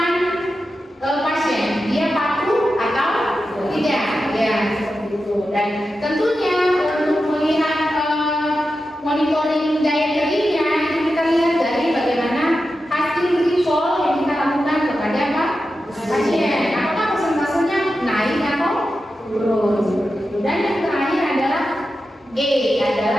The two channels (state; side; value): normal; both; correlation 0.91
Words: pasien, dia patuh atau tidak, ya, seperti itu. Dan tentunya untuk melihat monitoring dietary-nya itu kita lihat dari bagaimana hasil recall yang kita lakukan kepada pasien, apakah persentasenya naik atau turun. Dan yang terakhir adalah E,